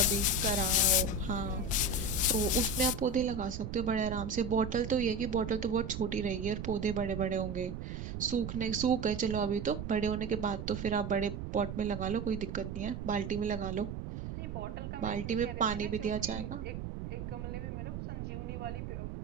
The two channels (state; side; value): noise; right; rumble, 6 dB below the sound